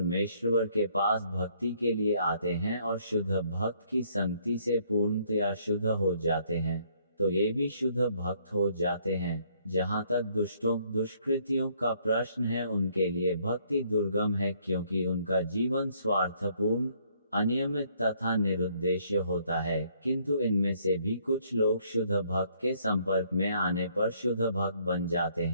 के पास भक्ति के लिए आते हैं और शुद्ध भक्त की संगति से पूर्णतया शुद्ध हो जाते हैं, तो ये भी शुद्ध भक्त हो जाते हैं। जहाँ तक दुष्टों, दुष्कृतियों का प्रश्न है, उनके लिए भक्ति दुर्गम है, क्योंकि उनका जीवन स्वार्थपूर्ण, अनियमित तथा निरुद्देश्य होता है। किंतु इनमें से भी कुछ लोग शुद्ध भक्त के संपर्क में आने पर शुद्ध भक्त बन जाते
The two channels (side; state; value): both; inverted; correlation -0.66